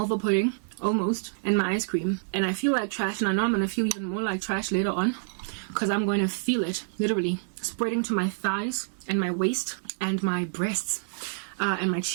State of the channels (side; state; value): left; silent; digital silence